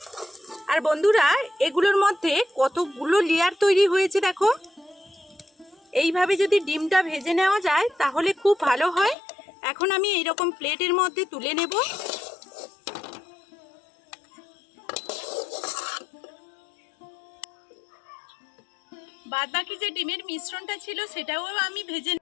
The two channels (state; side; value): drops out; right; at 9.2 s